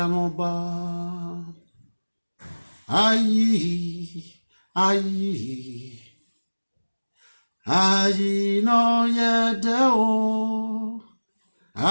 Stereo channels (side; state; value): both; inverted; correlation -1.00